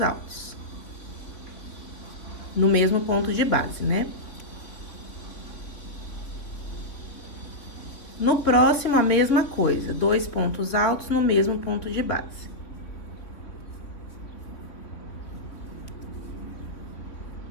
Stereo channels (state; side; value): late; right; 3.2 ms